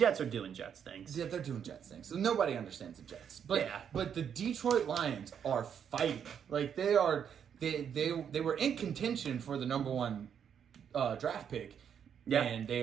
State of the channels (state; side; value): quieter; left; 8.1 dB